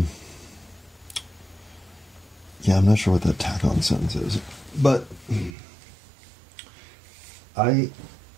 Yeah, I'm not sure what that tack-on sentence is, but I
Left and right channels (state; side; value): drops out; left; at 5.6 s